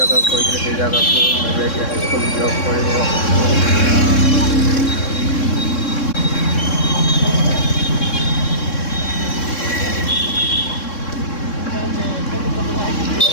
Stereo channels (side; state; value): right; late; 3.6 ms